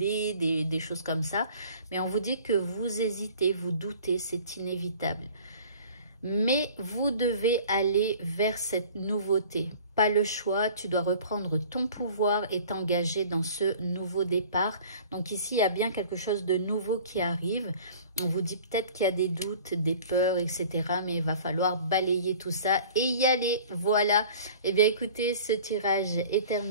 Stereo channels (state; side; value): inverted; both; correlation -0.46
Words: des choses comme ça. Mais on vous dit que vous hésitez, vous doutez, c'est inévitable. Mais vous devez aller vers cette nouveauté. Pas le choix, tu dois reprendre ton pouvoir et t'engager dans ce nouveau départ. Donc ici, il y a bien quelque chose de nouveau qui arrive. On vous dit peut-être qu'il y a des doutes, des peurs, etc. Mais il va falloir balayer tout ça et y aller. Voilà. Eh bien, écoutez, ce tirage est